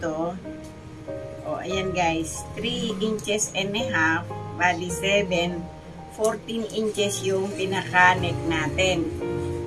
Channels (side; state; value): both; identical; correlation 1.00